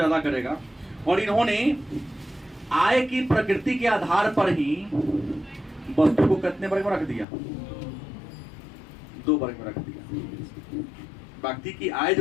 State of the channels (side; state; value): right; drops out; at 7.2 s